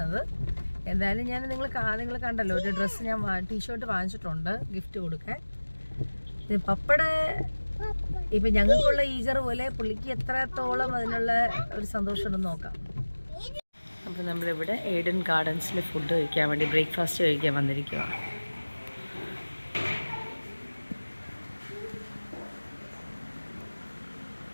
എന്തായാലും ഞാൻ നിങ്ങൾ കണ്ടല്ലോ, ഒരു ഡ്രസ്സ് ഞാൻ ടീഷർട്ട് വാങ്ങിച്ചിട്ടുണ്ട് ഗിഫ്റ്റ് കൊടുക്കാൻ. പപ്പയുടെ ഇപ്പം ഞങ്ങൾക്കുള്ള ഈഗർ പോലെ പുള്ളിക്ക് എത്രത്തോളം അതിനുള്ള ഒരു സന്തോഷം ഉണ്ടെന്ന് നോക്കാം. അപ്പോൾ നമ്മളിവിടെ ഏഡൻ ഗാർഡൻസിൽ ഫുഡ് കഴിക്കാൻ വേണ്ടി, ബ്രേക്ക്ഫാസ്റ്റ് കഴിക്കാൻ വന്നിരിക്കുക.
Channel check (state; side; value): inverted; both; correlation -1.00